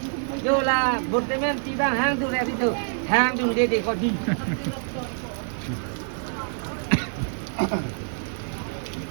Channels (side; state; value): left; silent; digital silence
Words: Jola, bortemen tiba hang tu leh itu. Hang tu dia kau di.